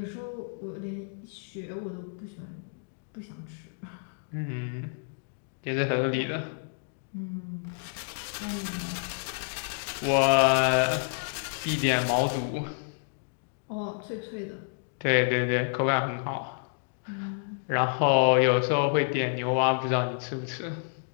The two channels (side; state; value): right; silent; digital silence